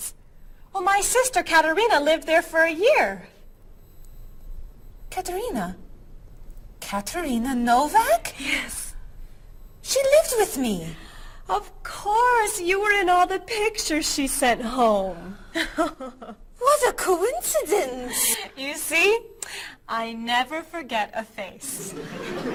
Well, my sister Katerina lived there for a year. Katerina? Katerina Novak? Yes. She lived with me. Of course, you were in all the pictures she sent home. What a coincidence! You see, I never forget a face.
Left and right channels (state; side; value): identical; both; correlation 1.00